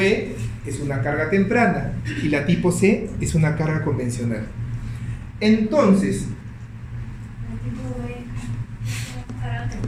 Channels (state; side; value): identical; both; correlation 1.00